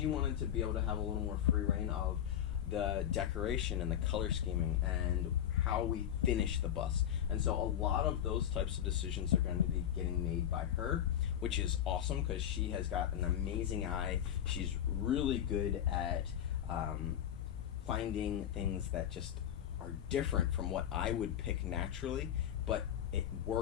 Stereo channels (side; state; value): right; quieter; 10.1 dB